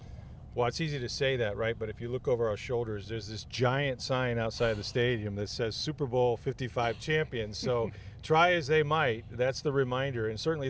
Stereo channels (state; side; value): identical; both; correlation 1.00